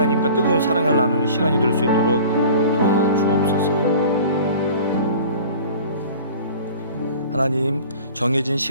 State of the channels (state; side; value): inverted; both; correlation -0.44